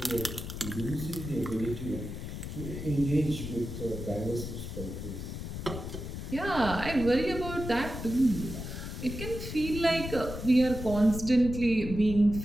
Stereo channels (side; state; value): left; noise; rumble, 7 dB below the sound